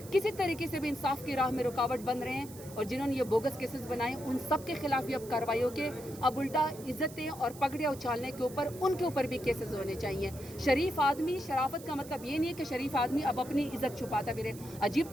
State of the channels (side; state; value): right; noise; hiss, 17 dB below the sound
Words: کسی طریقے سے بھی انصاف کی راہ میں رکاوٹ بن رہے ہیں اور جنہوں نے یہ بوگس کیسز بنائے, ان سب کے خلاف بھی اب کارروائیوں کے اب الٹا عزتیں اور پگڑیاں اچھالنے کے اوپر ان کے اوپر بھی کیسز ہونے چاہیے. شریف آدمی, شرافت کا مطلب یہ نہیں ہے کہ شریف آدمی اب اپنی عزت چھپاتا پھرے.